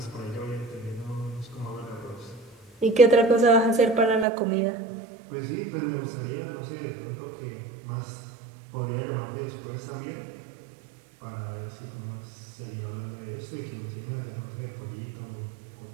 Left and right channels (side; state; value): left; drops out; at 4.2 s